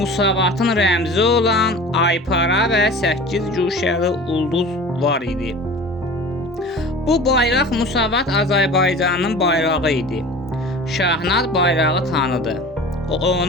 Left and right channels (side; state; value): both; normal; correlation 0.39